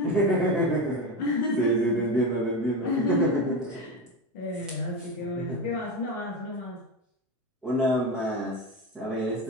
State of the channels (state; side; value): normal; both; correlation 0.20